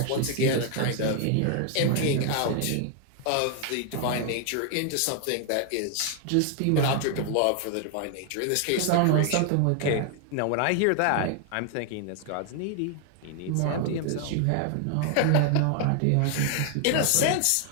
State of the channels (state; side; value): different; both; correlation 0.00